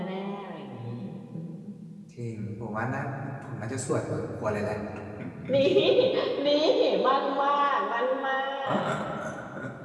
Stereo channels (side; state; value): both; identical; correlation 1.00